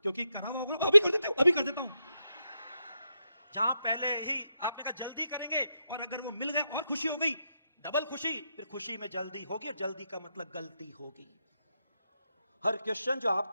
क्योंकि करा हुआ होगा। अभी कर देते हो, अभी कर देता हूं। जहां पहले ही आपने कहा जल्दी करेंगे और अगर वो मिल गए और खुशी हो गई, डबल खुशी, फिर खुशी में जल्दी होगी, और जल्दी का मतलब गलती होगी। हर क्वेश्चन जो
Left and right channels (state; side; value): inverted; both; correlation -0.84